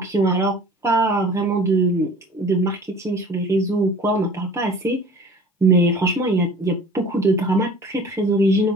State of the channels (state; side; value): normal; both; correlation 0.45